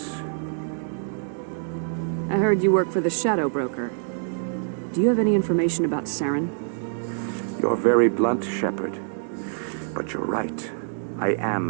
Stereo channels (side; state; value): left; silent; digital silence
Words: I heard you work for the Shadow Broker. Do you have any information about Saren? You're very blunt, Shepard. But you're right. I am